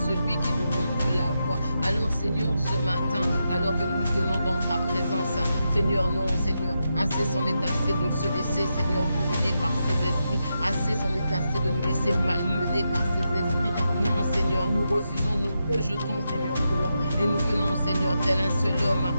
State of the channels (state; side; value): inverted; both; correlation -0.86